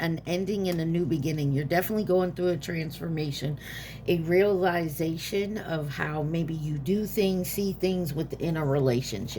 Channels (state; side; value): identical; both; correlation 1.00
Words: ending and a new beginning. You're definitely going through a transformation, a realization of how maybe you do things, see things within a